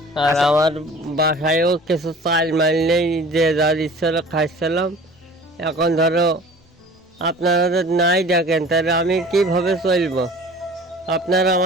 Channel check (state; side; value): normal; both; correlation 0.44